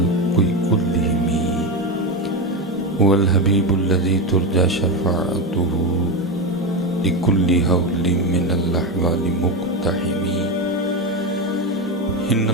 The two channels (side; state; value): both; normal; correlation 0.14